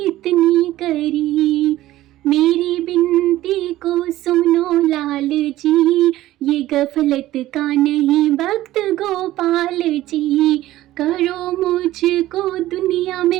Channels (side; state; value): left; quieter; 15.3 dB